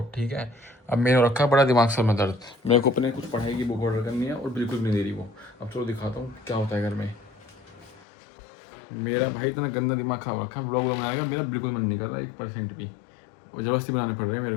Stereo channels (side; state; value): right; drops out; at 8.0 s